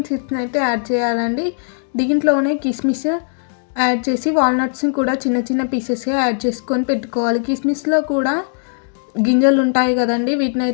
సీడ్స్ని అయితే యాడ్ చేయాలండి. దీంట్లోనే కిస్మిస్ యాడ్ చేసి వాల్నట్స్ని కూడా చిన్న చిన్న పీసెస్గా యాడ్ చేసుకొని పెట్టుకోవాలి. కిస్మిస్లో కూడా గింజలు ఉంటాయి కదండి, వీటిని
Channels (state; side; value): silent; right; digital silence